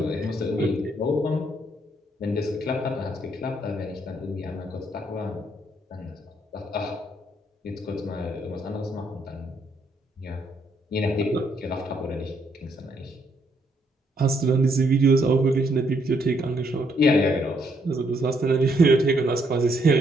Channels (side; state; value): both; normal; correlation 0.72